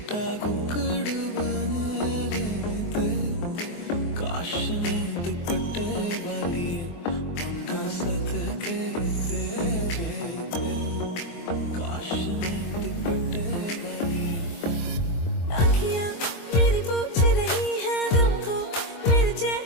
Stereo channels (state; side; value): late; right; 24 ms